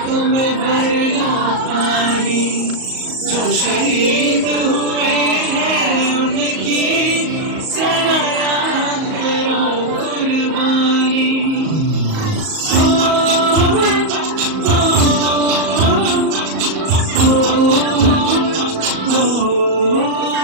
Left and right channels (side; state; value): left; late; 38 ms